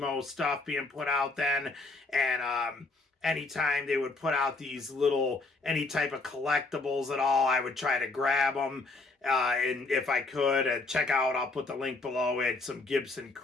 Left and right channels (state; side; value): quieter; right; 3.5 dB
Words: stuff being put out then. And anytime they would put out these little, any type of collectibles at all, I would try to grab them. And if I could, check out, I'll put the link below it, some Gibson